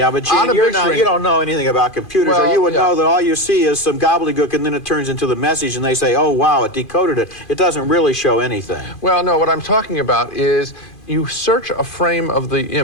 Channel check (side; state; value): right; late; 2.5 ms